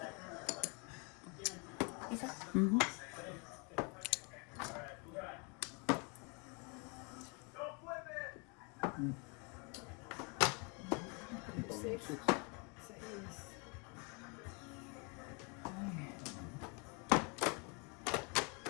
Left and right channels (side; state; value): right; quieter; 33.2 dB